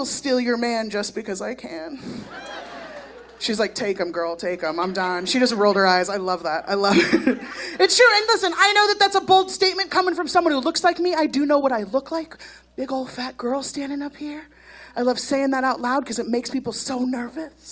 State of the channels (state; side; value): identical; both; correlation 1.00